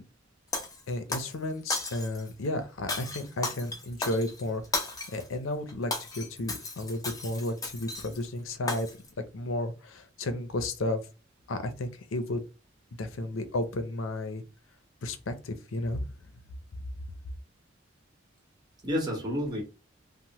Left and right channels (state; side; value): normal; both; correlation 0.29